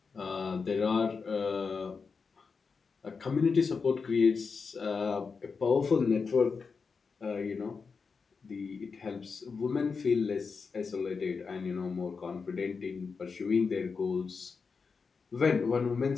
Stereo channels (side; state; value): right; quieter; 5.1 dB